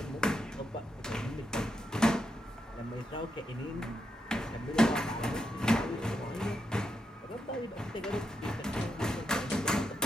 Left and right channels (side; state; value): both; normal; correlation 0.83